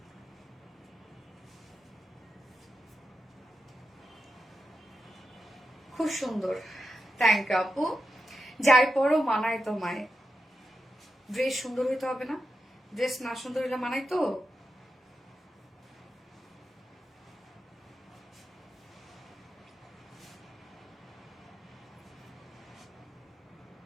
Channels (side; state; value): both; normal; correlation 0.89